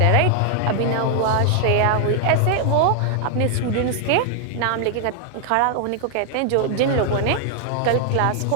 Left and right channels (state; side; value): different; both; correlation 0.00